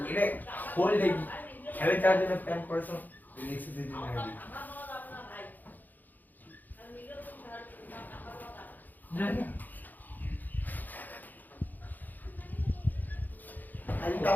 এটা হোল ডে খেলে যাওয়ার জন্য প্ল্যান করেছো এক্সারসাইজ জন্য রেডি জানি আজ তো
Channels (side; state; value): right; late; 0.085 ms